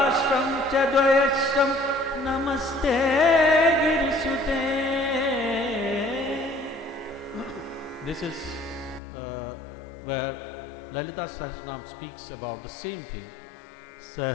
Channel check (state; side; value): drops out; right; at 9.0 s